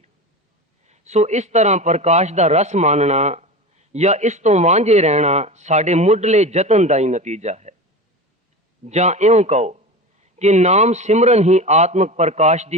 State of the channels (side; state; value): both; normal; correlation 0.28